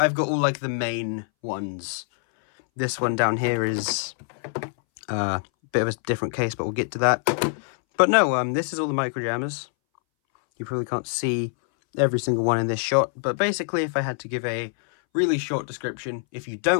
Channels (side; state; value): right; silent; 61 dB below the other